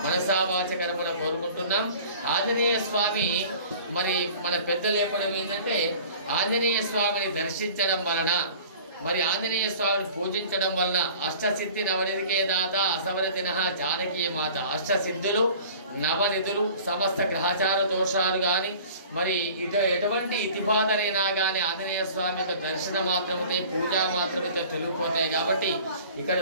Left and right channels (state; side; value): inverted; both; correlation -0.45